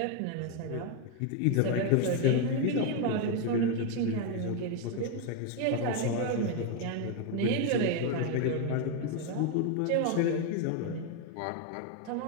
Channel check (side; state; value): both; different; correlation 0.02